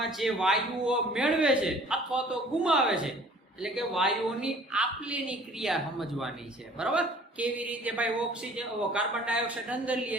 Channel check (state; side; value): normal; both; correlation 0.52